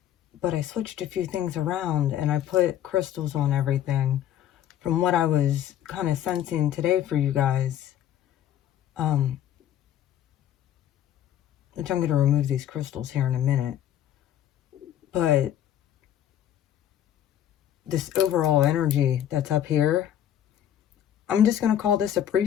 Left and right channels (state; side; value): quieter; right; 11.0 dB